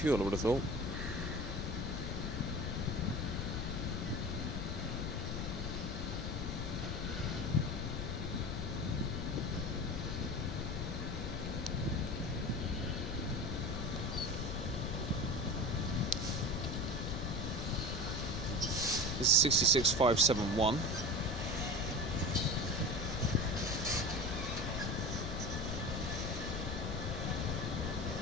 I would have thought. This is 66-571.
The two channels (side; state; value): left; noise; rumble, 2 dB below the sound